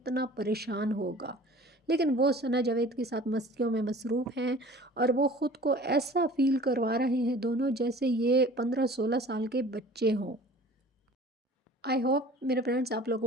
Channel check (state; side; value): normal; both; correlation 0.46